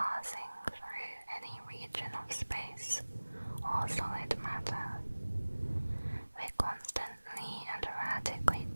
through any region of space or solid matter. They constantly and erratically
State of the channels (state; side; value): inverted; both; correlation -1.00